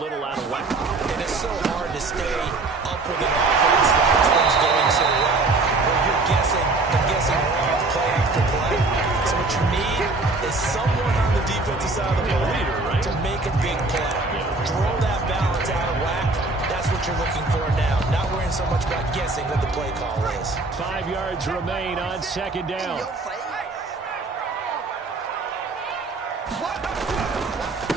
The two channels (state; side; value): quieter; left; 3.4 dB